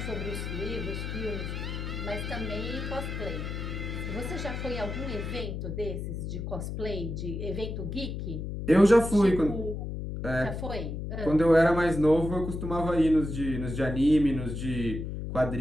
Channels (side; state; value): left; noise; hum, 5 dB below the sound